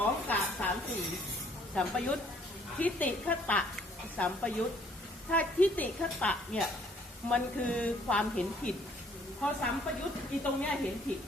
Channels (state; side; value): normal; both; correlation 0.61